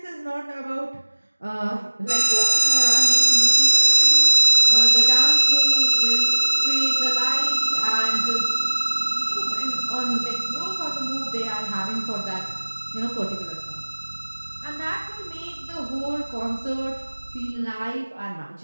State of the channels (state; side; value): inverted; both; correlation -1.00